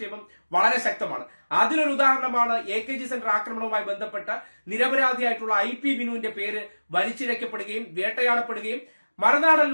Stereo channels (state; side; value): inverted; both; correlation -1.00